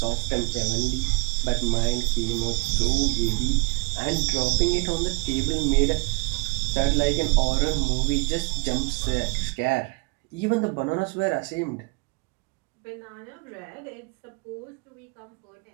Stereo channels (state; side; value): quieter; left; 29.2 dB